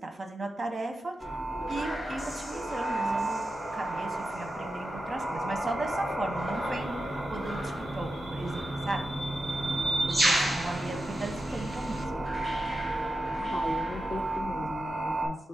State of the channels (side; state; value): both; normal; correlation 0.90